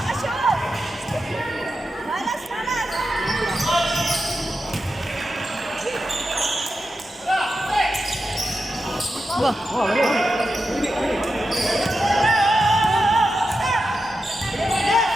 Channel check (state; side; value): normal; both; correlation 0.89